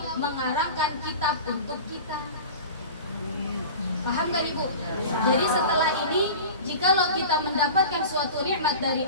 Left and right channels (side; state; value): both; inverted; correlation -0.35